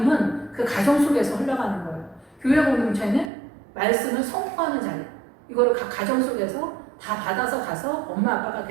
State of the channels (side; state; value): left; drops out; at 3.3 s